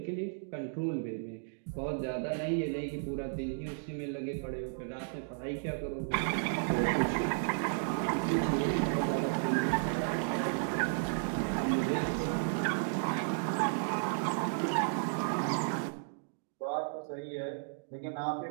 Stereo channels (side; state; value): left; silent; digital silence